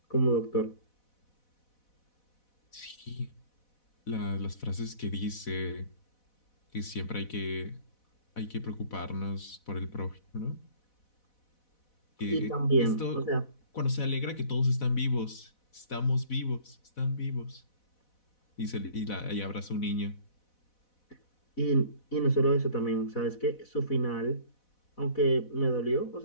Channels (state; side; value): late; right; 4.1 ms